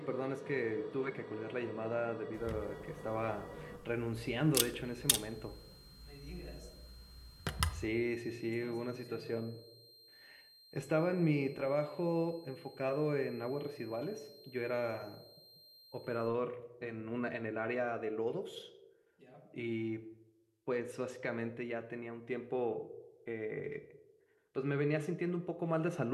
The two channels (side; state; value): both; identical; correlation 1.00